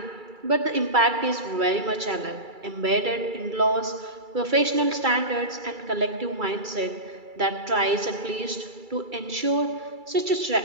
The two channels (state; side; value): late; left; 2.3 ms